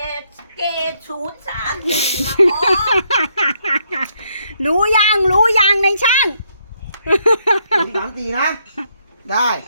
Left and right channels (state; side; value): inverted; both; correlation -0.74